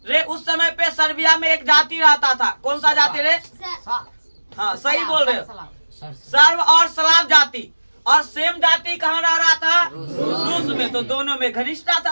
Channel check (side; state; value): both; inverted; correlation -1.00